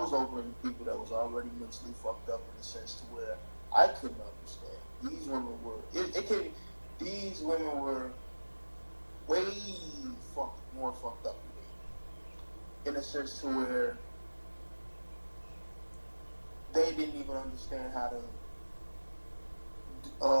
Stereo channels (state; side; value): inverted; both; correlation -1.00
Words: over in people that was already mentally fucked up in the sense to where I couldn't understand. These women were way more fucked up than me. In a sense to where they didn't even understand how to